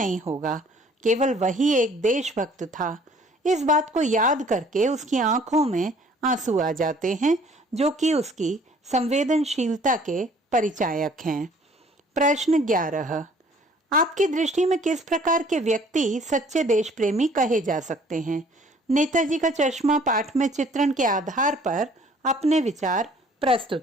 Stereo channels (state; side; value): normal; both; correlation 0.56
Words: होगा, केवल वही एक देशभक्त था। इस बात को याद करके उसकी आंखों में आंसू आ जाते हैं, जो कि उसकी संवेदनशीलता के परिचायक हैं। प्रश्न 11। आपकी दृष्टि में किस प्रकार के व्यक्ति सच्चे देश प्रेमी कहे जा सकते हैं? नेताजी का चश्मा पाठ में चित्रण के आधार पर अपने विचार